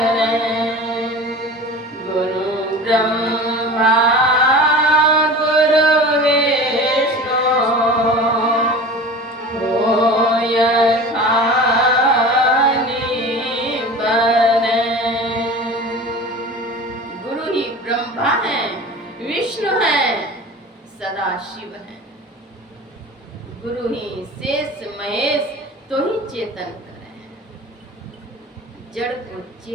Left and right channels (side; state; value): both; normal; correlation 0.36